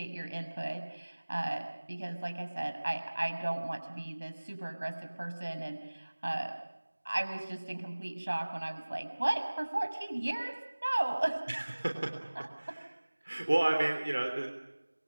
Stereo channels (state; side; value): inverted; both; correlation -1.00